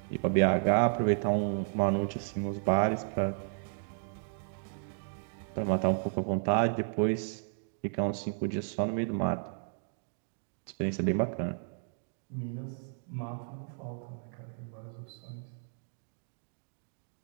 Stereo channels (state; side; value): silent; left; digital silence